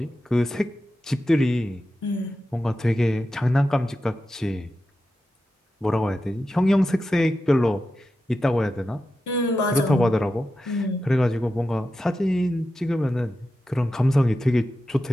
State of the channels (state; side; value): normal; both; correlation 0.91